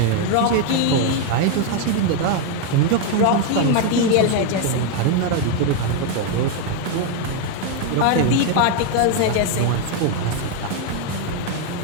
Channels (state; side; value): different; both; correlation 0.01